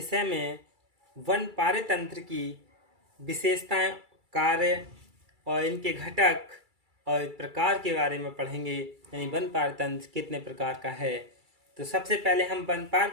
में वन पारतंत्र की विशेषताएं, कार्य और इनके घटक और प्रकार के बारे में पढ़ेंगे। यानी वन पारतंत्र कितने प्रकार का है। तो सबसे पहले हम वन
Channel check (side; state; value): left; late; 2.3 ms